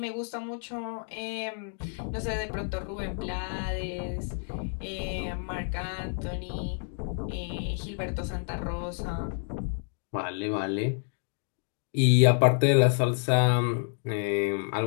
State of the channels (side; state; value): right; silent; 58 dB below the other